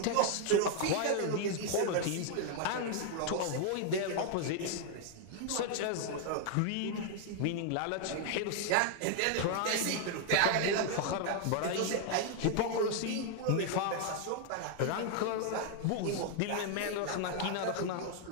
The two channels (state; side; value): different; both; correlation 0.00